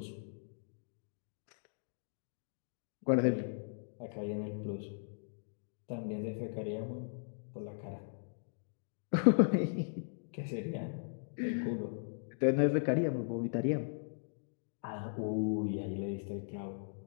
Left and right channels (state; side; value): silent; right; digital silence